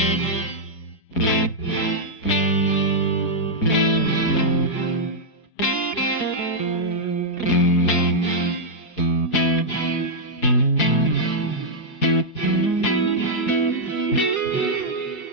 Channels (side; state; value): right; late; 5.2 ms